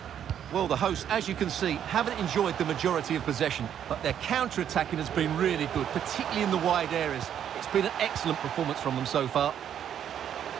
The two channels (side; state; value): left; quieter; 9.5 dB